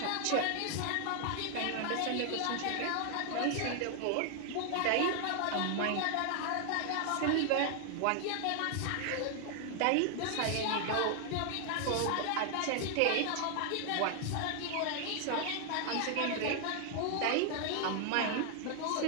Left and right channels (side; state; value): both; different; correlation 0.00